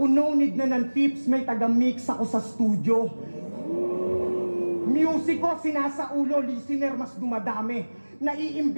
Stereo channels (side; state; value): both; inverted; correlation -1.00